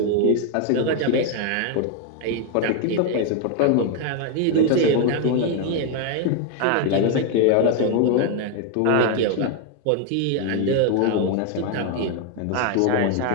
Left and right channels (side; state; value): both; different; correlation 0.01